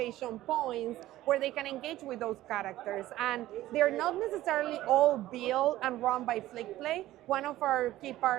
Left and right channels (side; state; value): left; quieter; 15.2 dB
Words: points where they can engage with those characters. And they're not necessarily all built and run by Flickplay. One of our key